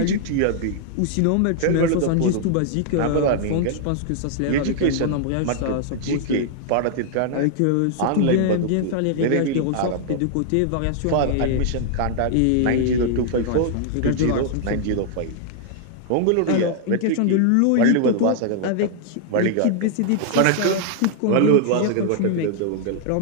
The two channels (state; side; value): different; both; correlation -0.01